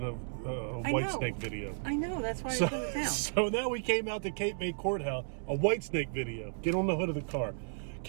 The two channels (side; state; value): left; silent; digital silence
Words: a Whitesnake video. I know, that's why I turned it down. So now we came out to Cape May Courthouse, a Whitesnake video. Get on the hood of the car.